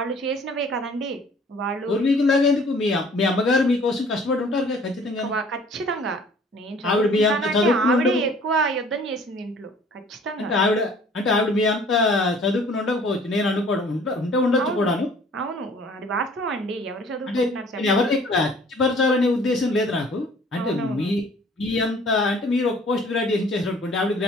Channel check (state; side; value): normal; both; correlation 0.53